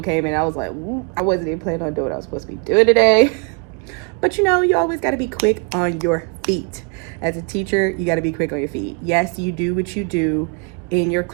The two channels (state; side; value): quieter; left; 33.1 dB